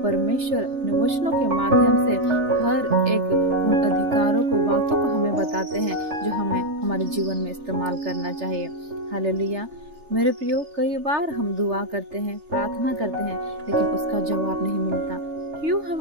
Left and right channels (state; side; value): late; left; 3.4 ms